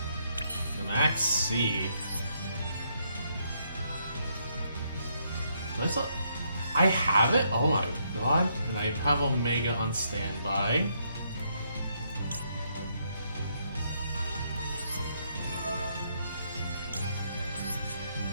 Max C. I have it? Oh my god. And I have Omega on standby.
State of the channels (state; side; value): inverted; both; correlation -0.74